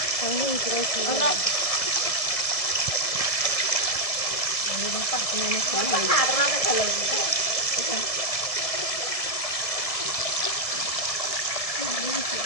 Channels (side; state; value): right; late; 1.7 ms